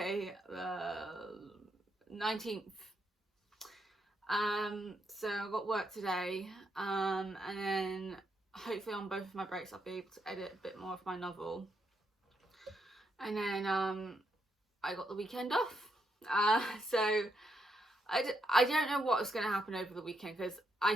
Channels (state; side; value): normal; both; correlation 0.79